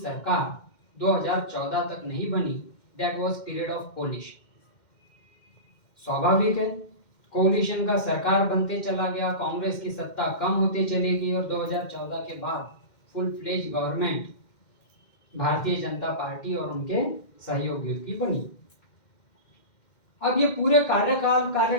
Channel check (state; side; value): late; right; 2.1 ms